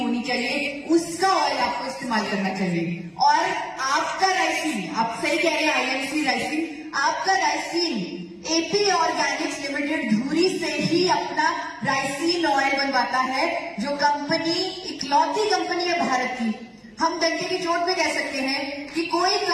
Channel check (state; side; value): identical; both; correlation 1.00